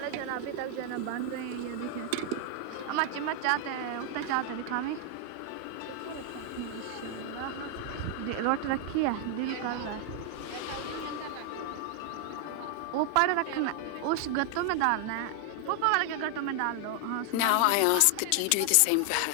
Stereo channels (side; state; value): both; different; correlation 0.00